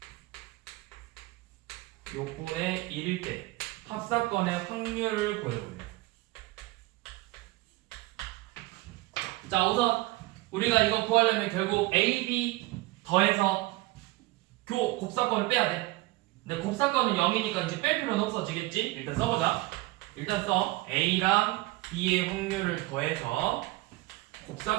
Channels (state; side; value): quieter; left; 20.1 dB